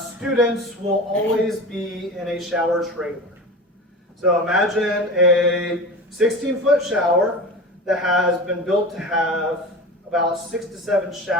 students will always be in a shower trailer. So imagine a 16-foot shower that has been built to have about 6 to 7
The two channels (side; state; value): both; normal; correlation 0.31